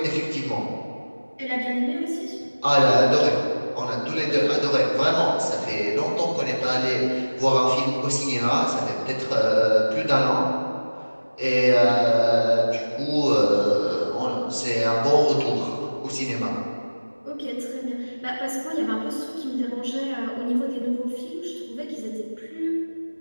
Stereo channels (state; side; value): inverted; both; correlation -1.00